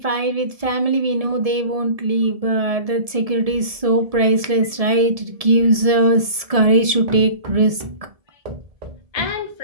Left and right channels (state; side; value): late; left; 1.7 ms